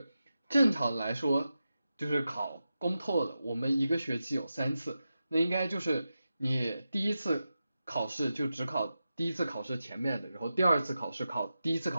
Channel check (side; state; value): both; inverted; correlation -0.91